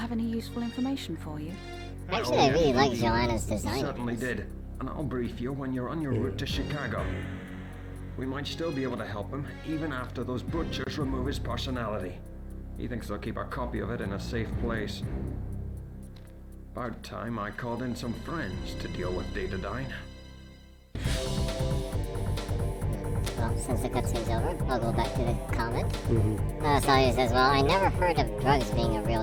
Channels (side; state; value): both; identical; correlation 1.00